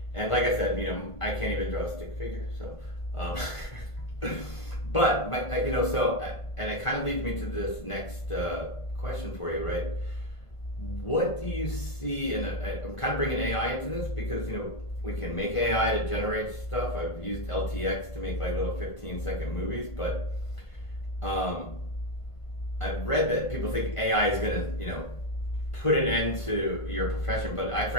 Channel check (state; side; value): late; right; 1.5 ms